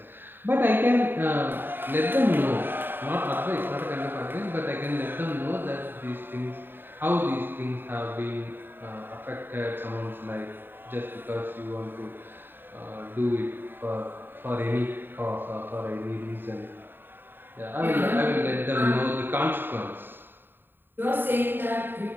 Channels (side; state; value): left; late; 0.095 ms